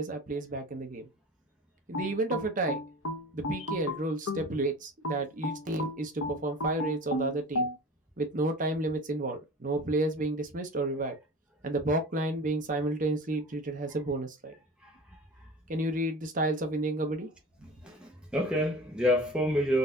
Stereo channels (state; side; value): normal; both; correlation 0.37